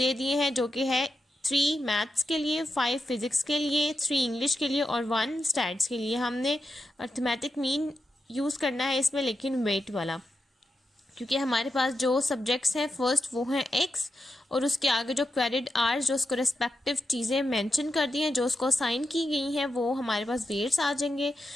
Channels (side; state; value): both; normal; correlation 0.88